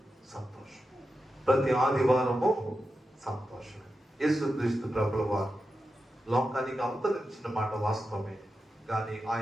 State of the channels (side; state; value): both; normal; correlation 0.90